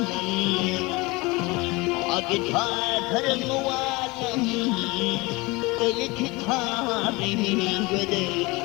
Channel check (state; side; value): quieter; right; 24.1 dB